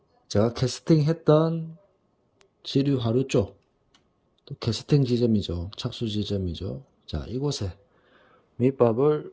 제가 캐스팅했던 지류 하류 쪽, 또 캐스팅 지점이죠. 착수 지점이죠. 자, 이곳에 밑밥을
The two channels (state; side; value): identical; both; correlation 1.00